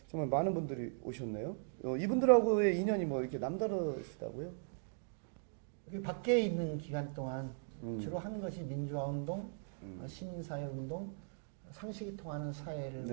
정말 많은 분들이 오셨네요. 이분들하고의 인연이 뭐 이렇게 남다르시다고요? 그 밖에 있는 기간 동안 주로 하는 것이 민주화운동, 시민사회운동, 상식이 통하는 사회를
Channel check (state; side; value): silent; left; digital silence